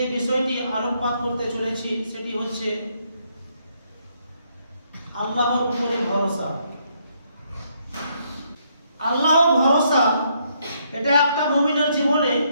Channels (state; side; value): inverted; both; correlation -0.73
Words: বিষয়টি আলোকপাত করতে চলেছি সেটি হচ্ছে আল্লাহর উপরে ভরসা। আল্লাহ ভরসা এটা একটা মুমিনের জীবনে